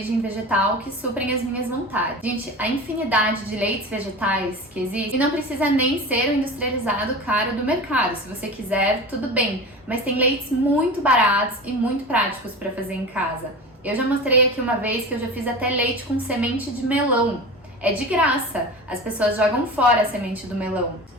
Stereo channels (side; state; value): both; normal; correlation 0.31